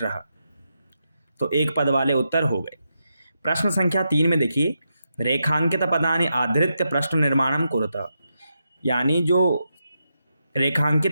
तो एक पद वाले उत्तर हो गए। प्रश्न संख्या 3 में देखिए, रेखांकित पदानि आधृत्य प्रश्न निर्माणम कुरुत, यानी जो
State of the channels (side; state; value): both; inverted; correlation -0.85